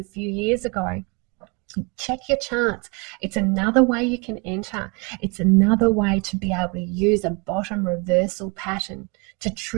few years ago. Check your charts. It's another way you can enter. It's another way to be able to use a bottom reversal pattern to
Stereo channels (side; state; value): left; quieter; 30.9 dB